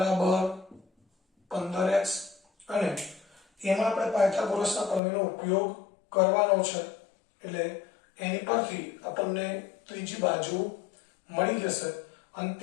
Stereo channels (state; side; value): drops out; right; at 5.0 s